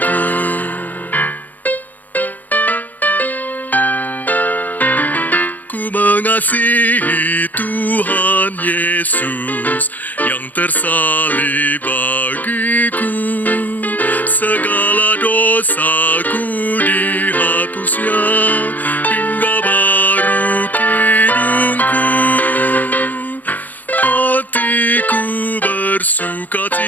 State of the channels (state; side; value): late; right; 0.082 ms